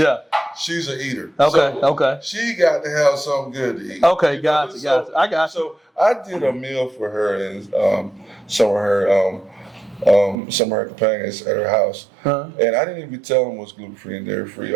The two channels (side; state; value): left; drops out; at 10.4 s